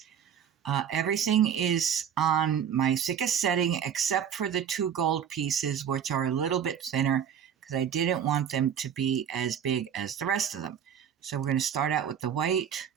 Everything is on my thickest setting except for the two gold pieces, which are a little bit thinner because I didn't want them to be as big as the rest of them. So we're going to start out with the white,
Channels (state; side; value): quieter; left; 8.6 dB